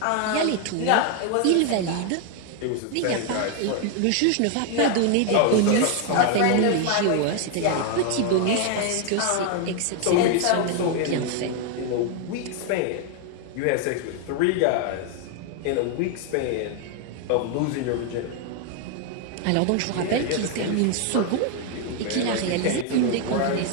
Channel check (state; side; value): different; both; correlation 0.00